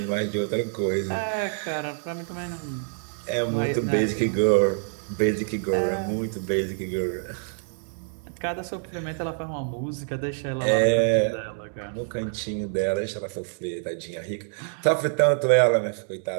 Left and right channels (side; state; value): left; silent; digital silence